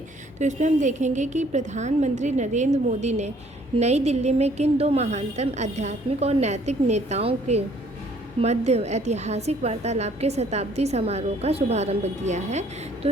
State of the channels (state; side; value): normal; both; correlation 0.60